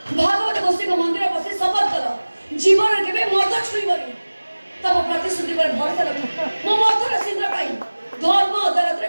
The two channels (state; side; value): inverted; both; correlation -1.00